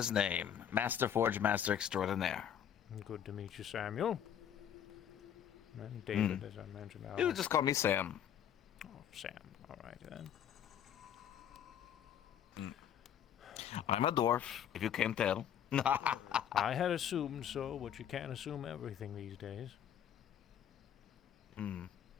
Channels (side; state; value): right; quieter; 9.5 dB